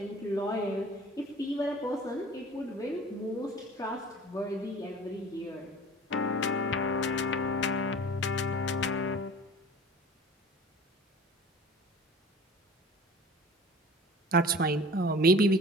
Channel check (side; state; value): both; normal; correlation 0.43